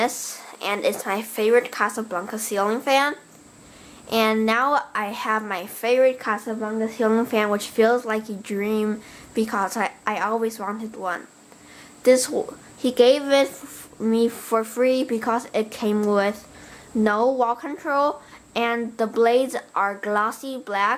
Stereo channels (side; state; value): both; identical; correlation 1.00